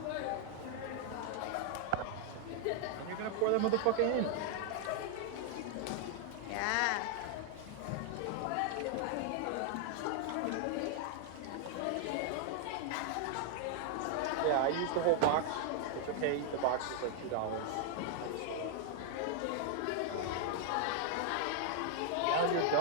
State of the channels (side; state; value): both; different; correlation 0.00